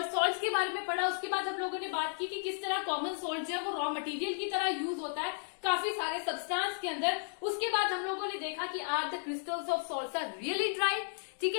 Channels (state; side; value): silent; right; digital silence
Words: के बारे में पढ़ा। उसके बाद हम लोगों ने बात की कि किस तरह कॉमन सॉल्ट जो है वो रॉ मटेरियल की तरह यूज होता है, काफी सारे सब्सटेंस के अंदर। उसके बाद हम लोगों ने देखा कि are the crystals of salts are really dry. ठीक